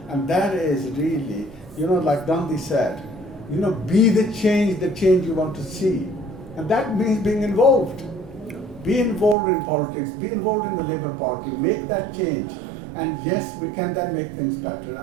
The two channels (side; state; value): left; drops out; at 9.3 s